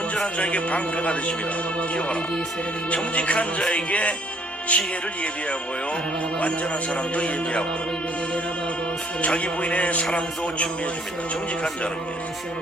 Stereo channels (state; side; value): normal; both; correlation 0.63